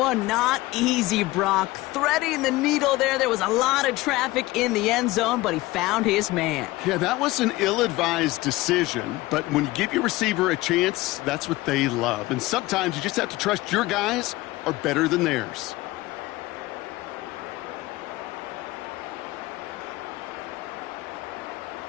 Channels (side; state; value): right; quieter; 19.3 dB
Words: not easy, Brock. Threading the needle there. There was a lot of traffic in the end zone, but he found his man. Yeah, that was an ill-advised decision, but when you give your receiver a chance, that's what they love. And sometimes you just have to trust your guys are better than theirs.